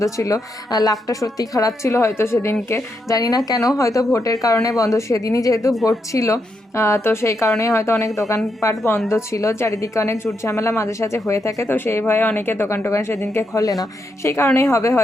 ছিল। লাকটা সত্যি খারাপ ছিল হয়তো সেদিনকে, জানি না কেন, হয়তো ভোটের কারণে বন্ধ, সেদিনই যেহেতু ভোট ছিল তো সেই কারণেই হয়তো অনেক দোকানপাট বন্ধ ছিল। চারিদিকে অনেক ঝুট ঝামেলা মাঝে সাঝে হয়ে থাকে, তো সেই ভয়ে অনেকে দোকান সেদিনকে খোলে না, সেই কারণেই হবে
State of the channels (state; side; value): normal; both; correlation 0.81